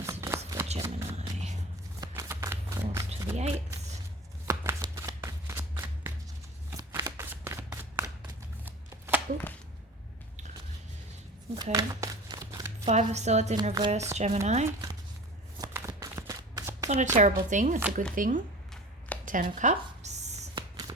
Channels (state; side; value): normal; both; correlation 0.38